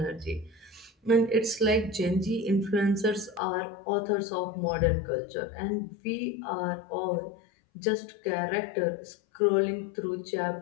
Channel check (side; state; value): right; drops out; at 3.4 s